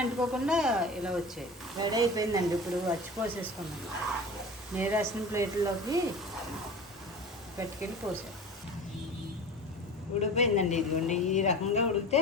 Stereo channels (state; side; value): normal; both; correlation 0.34